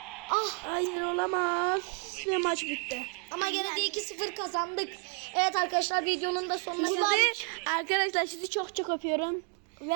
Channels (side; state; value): left; quieter; 38.2 dB